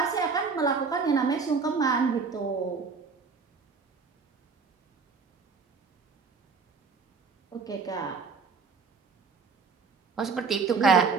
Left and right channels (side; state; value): left; quieter; 5.1 dB